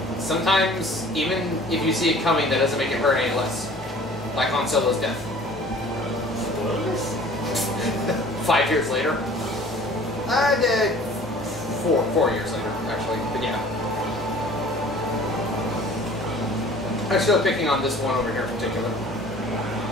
Sometimes, even if you see it coming, that doesn't make it hurt any less. Like Han Solo's death. Spoilers? 5 years later. Four years later, actually, but yeah. I'm still picking on this one over here in particular.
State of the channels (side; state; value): both; normal; correlation 0.48